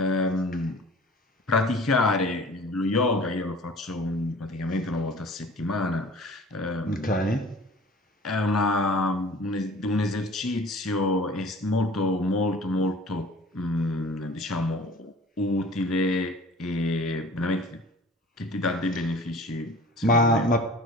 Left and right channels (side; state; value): both; normal; correlation 0.46